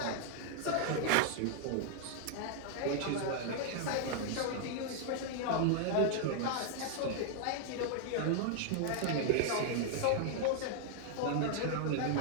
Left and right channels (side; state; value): both; different; correlation 0.00